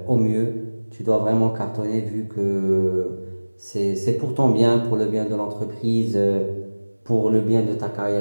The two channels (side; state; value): both; inverted; correlation -1.00